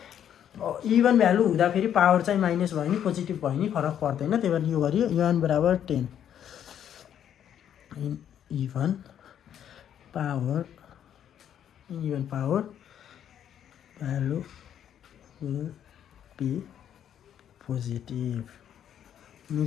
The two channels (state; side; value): quieter; right; 9.7 dB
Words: इभन भ्यालु हुँदाखेरि पावर चाहिँ माइनस भयो नि पोजिटिभ भयो नि फरक पर्दैन त्यही भएर यो गरियो n बराबर 10 even power value will be positive